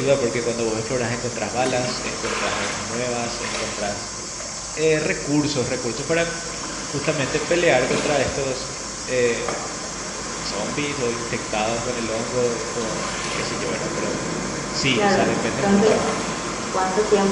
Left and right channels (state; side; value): identical; both; correlation 1.00